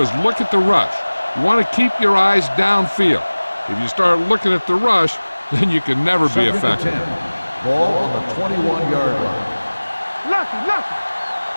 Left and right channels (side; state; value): both; inverted; correlation -1.00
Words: look at the rush. You want to keep your eyes downfield. If you start looking at the rush, then you can never be effective. Ball on the 21-yard line.